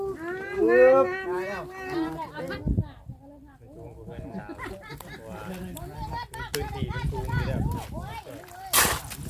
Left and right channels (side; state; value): both; identical; correlation 1.00